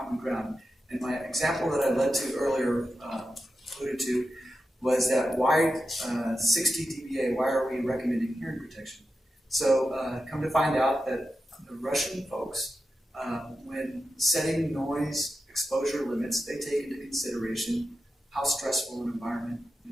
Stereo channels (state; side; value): normal; both; correlation 0.90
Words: ground. And my example that I led to earlier, alluded to, was that why 60 dBA, why are we recommending hearing protection? So come to find out that the Russian folks, when setting noise exposure limits, they take into consideration how stressful an environment